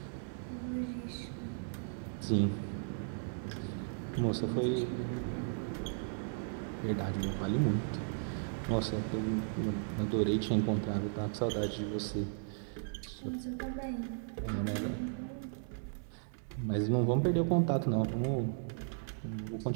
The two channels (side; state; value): left; silent; digital silence